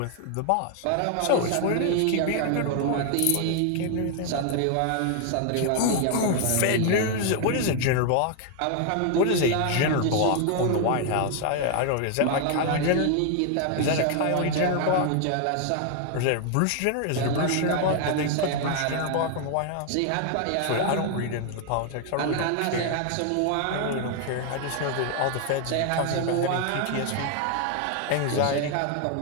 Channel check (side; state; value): both; different; correlation 0.00